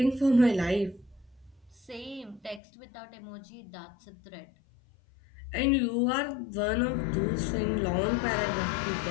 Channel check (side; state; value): right; drops out; at 2.6 s